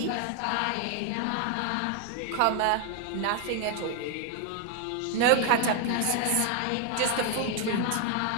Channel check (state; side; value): different; both; correlation 0.00